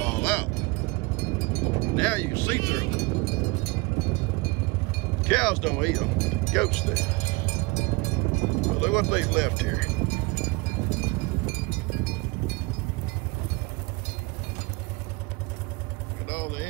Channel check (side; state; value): left; quieter; 25.2 dB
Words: all out. Now you can see through them. Cows don't eat them, but the goats do. But look what they've left here. Look at all the